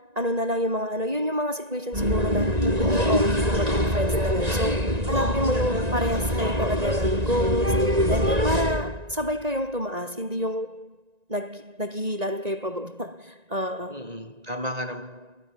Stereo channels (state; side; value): late; left; 1.9 ms